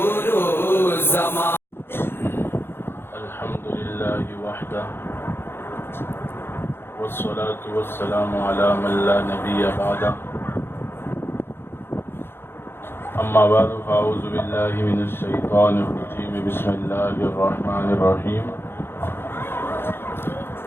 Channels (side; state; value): right; late; 0.11 ms